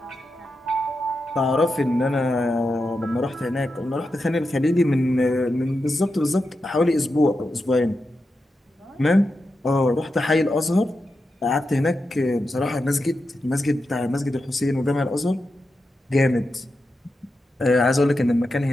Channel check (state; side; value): normal; both; correlation 0.89